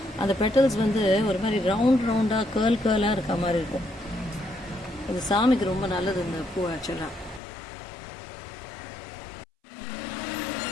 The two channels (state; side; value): drops out; right; at 7.4 s